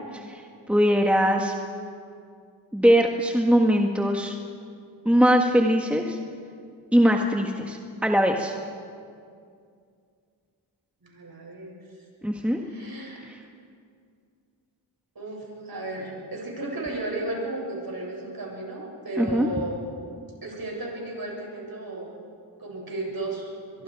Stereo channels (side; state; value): both; normal; correlation 0.77